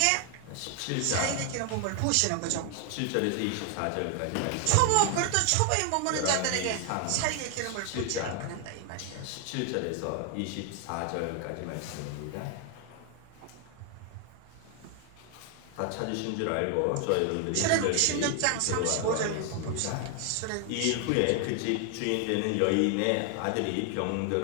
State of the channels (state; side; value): different; both; correlation 0.00